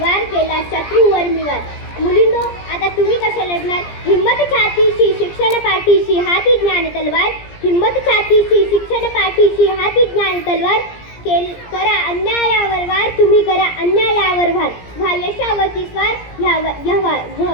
केला शत्रूवर मी वार। मुलींनो, आता तुम्ही कशा लढणार? हिम्मत छातीशी शिक्षण पाठीशी हाती ज्ञान तलवार, हिम्मत छातीशी शिक्षण पाठीशी हाती ज्ञान तलवार, करा अन्यायावर वार, तुम्ही करा अन्यायावर वार, व्हा यशावरती स्वार,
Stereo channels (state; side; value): late; right; 17 ms